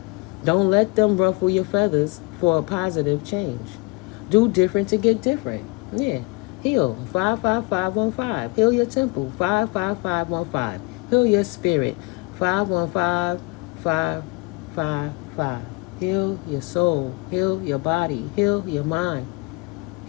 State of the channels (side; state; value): right; quieter; 27.8 dB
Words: Don't let them ruffle your feathers for a positive change. Do different to get different. Yeah. Heal 55515. Heal your temple 55515. Heal your spirit 515555. Heal your soul. Heal your body. Heal your mind.